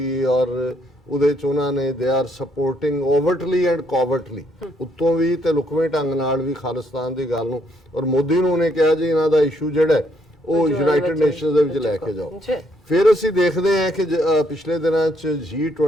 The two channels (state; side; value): normal; both; correlation 0.71